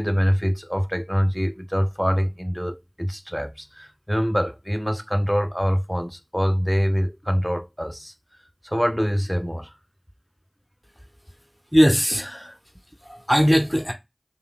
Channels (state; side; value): identical; both; correlation 1.00